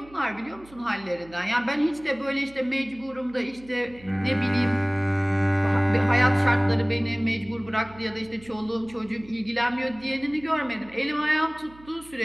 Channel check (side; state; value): right; noise; hum, 23 dB below the sound